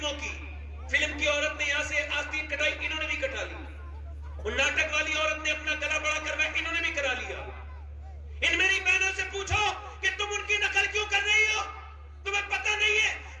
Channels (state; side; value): identical; both; correlation 1.00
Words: کی. فلم کی عورت نے یہاں سے آستین کٹائی, انہوں نے بھی کٹا لی. وہ ناٹک والی عورت نے اپنا گلا بڑا کروایا, انہوں نے بھی کرا لیا. ان میری بہنوں سے پوچھو کہ تم ان کی نقل کیوں کر رہی ہو, تمہیں پتہ نہیں ہے